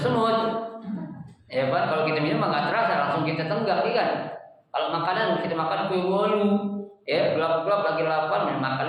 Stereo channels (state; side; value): identical; both; correlation 1.00